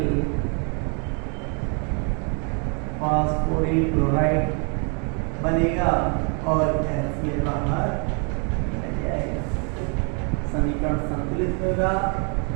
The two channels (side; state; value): left; quieter; 38.0 dB